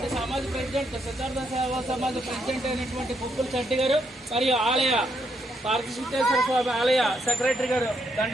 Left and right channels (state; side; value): normal; both; correlation 0.77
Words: సమాజ ప్రెసిడెంట్ సిద్ధార్థ సేవా సమాజ ప్రెసిడెంట్ అయినటువంటి కుక్కుల చట్టి గారు మరియు ఆలయ పార్వతీశ్వర స్వామి ఆలయ సెక్రటరీ గారు